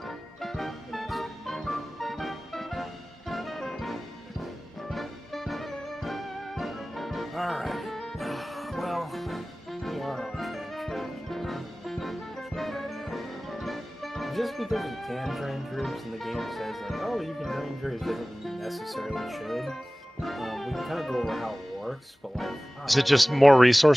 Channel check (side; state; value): both; normal; correlation 0.98